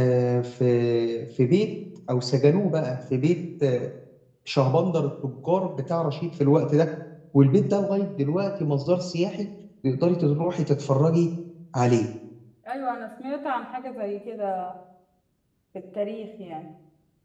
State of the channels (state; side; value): identical; both; correlation 1.00